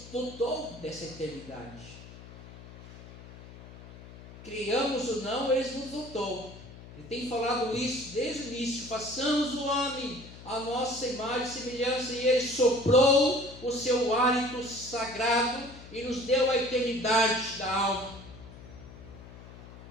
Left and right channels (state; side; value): noise; left; hum, 17 dB below the sound